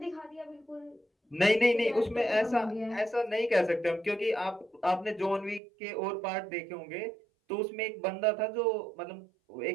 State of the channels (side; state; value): left; drops out; at 5.6 s